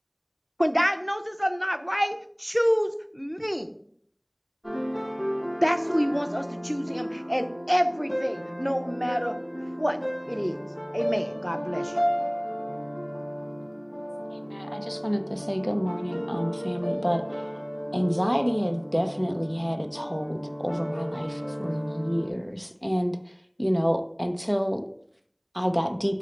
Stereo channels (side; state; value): both; identical; correlation 1.00